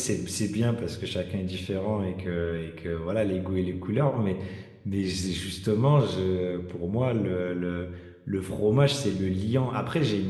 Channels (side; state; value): both; identical; correlation 1.00